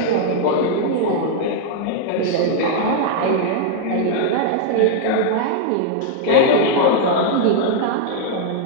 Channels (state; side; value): different; both; correlation -0.01